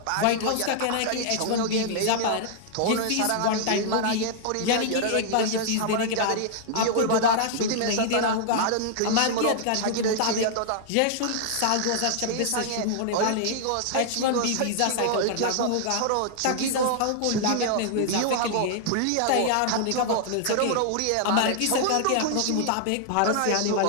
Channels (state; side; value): different; both; correlation -0.01